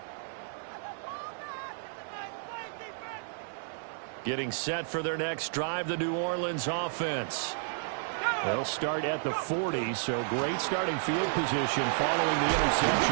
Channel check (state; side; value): silent; left; 57 dB below the other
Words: Getting set for their next drive, the New Orleans offense. They'll start at the 40, so great starting field position following the